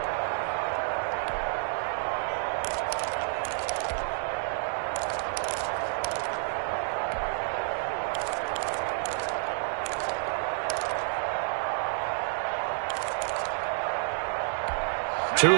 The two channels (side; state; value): left; silent; digital silence